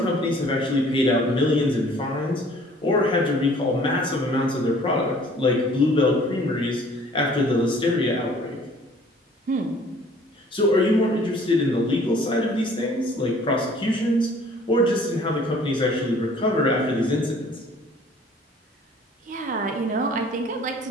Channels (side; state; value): both; normal; correlation 0.54